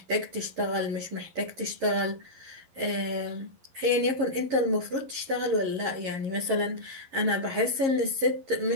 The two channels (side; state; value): left; late; 11 ms